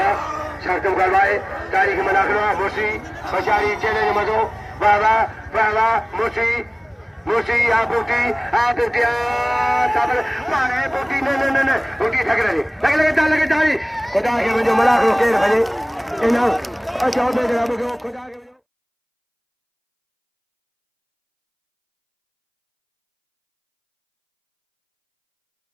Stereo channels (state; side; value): identical; both; correlation 1.00